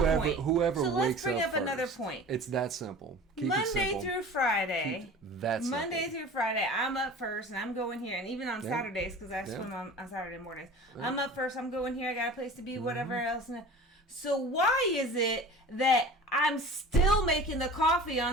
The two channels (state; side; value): normal; both; correlation 0.40